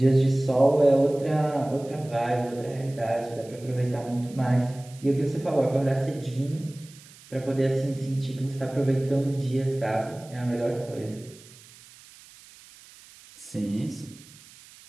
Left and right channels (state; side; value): noise; right; hiss, 22 dB below the sound